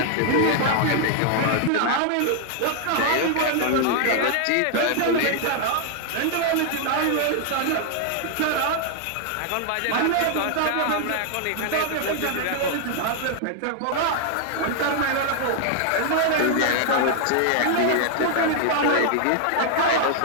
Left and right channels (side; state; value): both; different; correlation 0.00